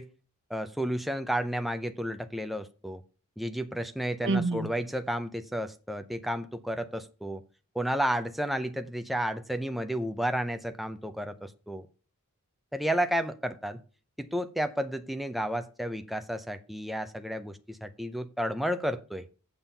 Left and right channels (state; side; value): normal; both; correlation 0.86